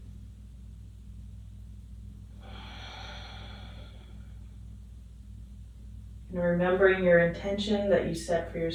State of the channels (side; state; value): both; identical; correlation 1.00